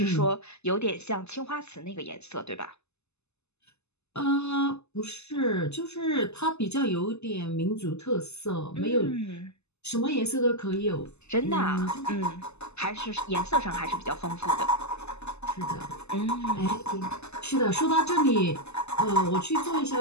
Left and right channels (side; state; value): right; late; 0.80 ms